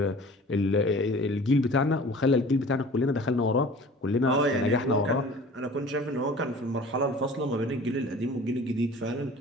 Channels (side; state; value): both; normal; correlation 0.45